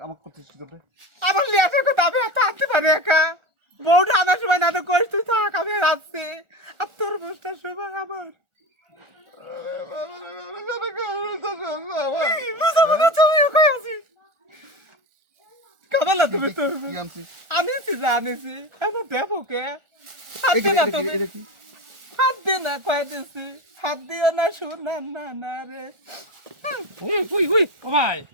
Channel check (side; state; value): left; late; 1.4 ms